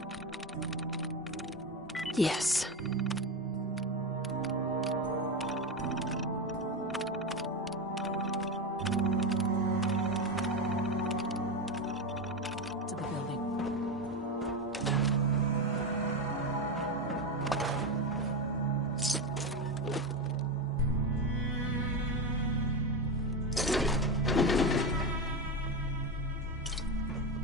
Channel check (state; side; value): normal; both; correlation 0.16